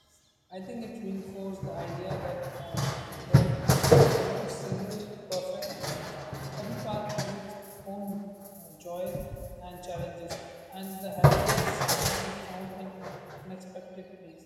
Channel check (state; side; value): identical; both; correlation 1.00